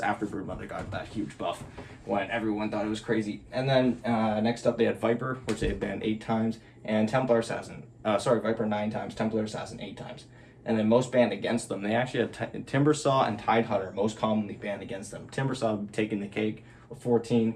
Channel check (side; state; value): both; identical; correlation 1.00